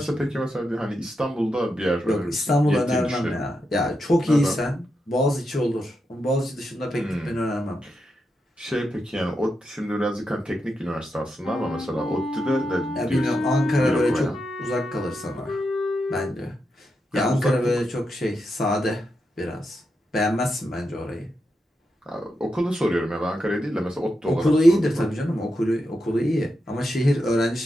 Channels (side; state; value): both; normal; correlation 0.86